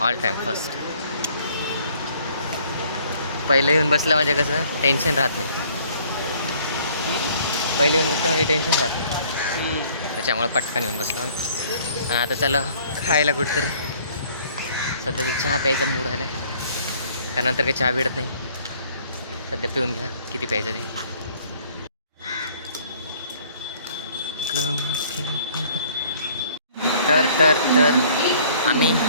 टाईम फर्स्ट. पहिले येऊन बसलं म्हणजे कसं टेन्शन राहत नाही. पहिले येऊन बसलं म्हणजे टेन्शन राहत नाही. त्याच्यामुळे पटकन येऊन बसलो. आणि आता चला खायला कुठतरी. सध्या तर चहा प्यायचा मूड आला आहे. त्यानंतर काही चहा भेटत नाही. सध्या पिऊन घ्या किती प्यायचं ते. तर तर तर आम्ही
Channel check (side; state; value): both; inverted; correlation -0.58